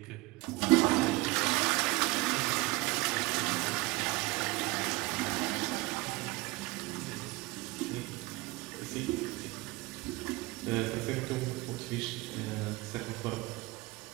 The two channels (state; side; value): quieter; left; 21.9 dB